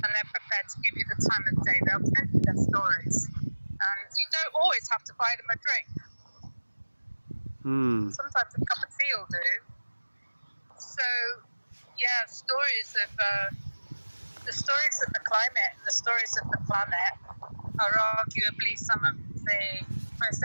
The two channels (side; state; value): both; inverted; correlation -1.00